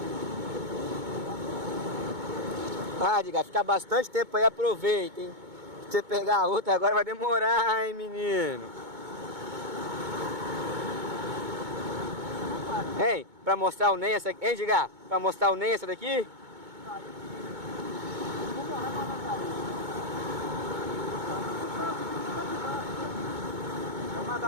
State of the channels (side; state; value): left; late; 2.2 ms